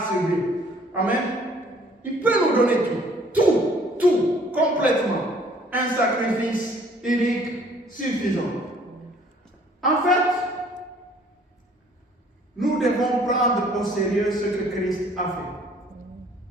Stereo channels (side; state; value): both; normal; correlation 0.58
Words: subi. Amen. Il peut nous donner tout, complètement. Un sacrifice unique suffisant. En fait, nous devons prendre au sérieux ce que Christ a fait.